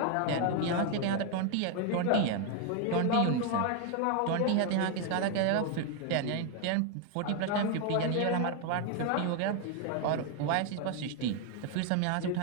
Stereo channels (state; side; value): different; both; correlation 0.01